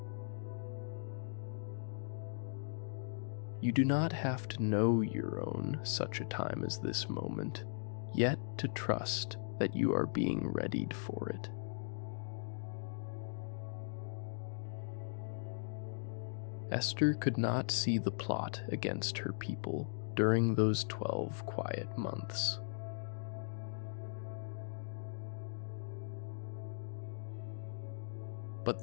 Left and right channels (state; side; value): silent; right; digital silence